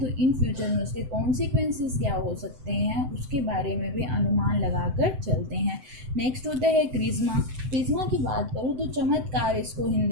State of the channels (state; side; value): late; left; 7.8 ms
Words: इन फ्यूचर में उसके कॉन्सिक्वेंसेस क्या हो सकते हैं, उसके बारे में भी अनुमान लगाकर चलते हैं। नेक्स्ट होता है क्रिज्मा। क्रिज्मा की बात करूँ तो चमत्कार इसको